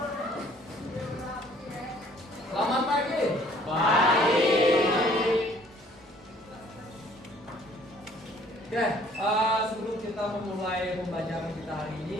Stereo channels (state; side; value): normal; both; correlation 0.57